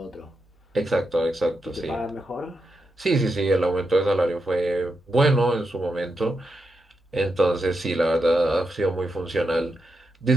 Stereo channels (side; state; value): both; normal; correlation 0.85